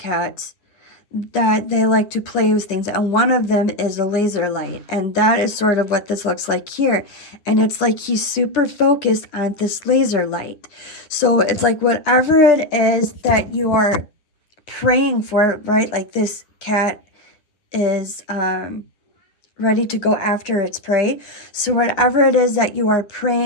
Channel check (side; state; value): right; late; 9.8 ms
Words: that they like to play with things, and one of them is a laser light, and that is sort of what this looks like here. And it's like he's super focused on this laser light. So it's like whatever it is that you are praying for, right? Like this cat is ready to go after its prey. So whatever it is that you are